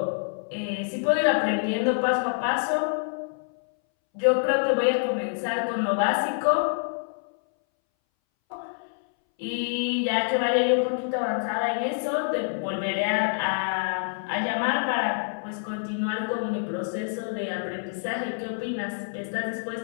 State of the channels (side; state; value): right; silent; 60 dB below the other